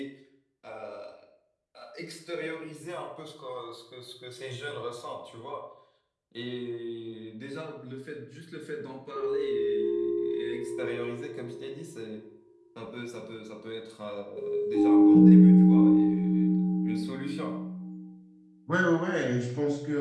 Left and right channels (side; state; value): both; identical; correlation 1.00